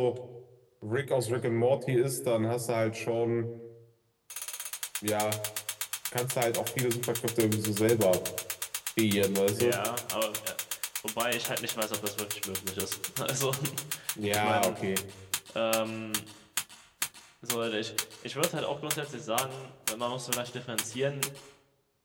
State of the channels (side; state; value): both; identical; correlation 1.00